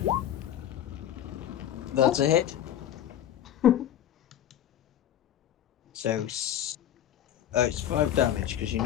That's a hit. So it's 5 damage because you're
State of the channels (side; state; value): right; quieter; 11.0 dB